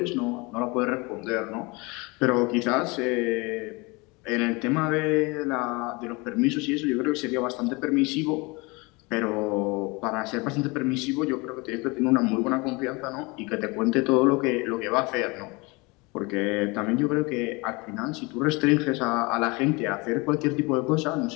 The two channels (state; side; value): quieter; right; 26.3 dB